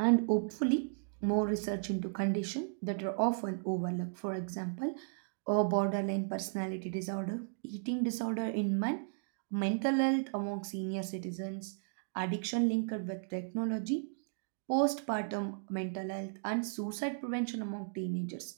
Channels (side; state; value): left; silent; digital silence